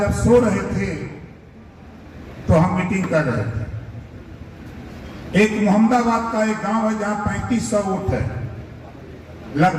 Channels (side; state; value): both; identical; correlation 1.00